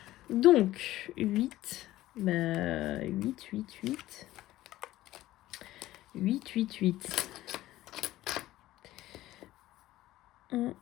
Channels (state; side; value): quieter; right; 15.6 dB